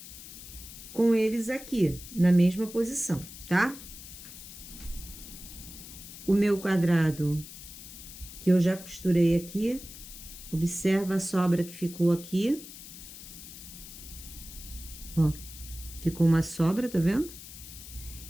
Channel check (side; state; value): left; noise; hiss, 14 dB below the sound